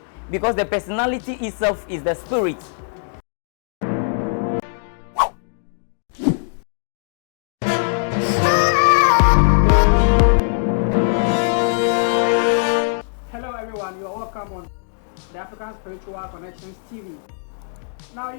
because the personality itself is the spirit. Hello everyone, you are welcome on the African Spiritual Connections TV. Now,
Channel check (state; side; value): silent; right; digital silence